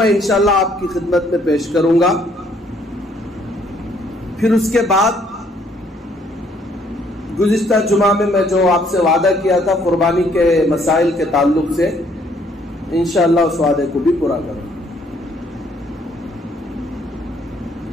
انشاءاللہ آپ کی خدمت میں پیش کروں گا. پھر اس کے بعد گزشتہ جمعہ میں جو آپ سے وعدہ کیا تھا قربانی کے مسائل کے تعلق سے انشاءاللہ اس وعدے کو بھی پورا کروں.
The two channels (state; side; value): normal; both; correlation 0.66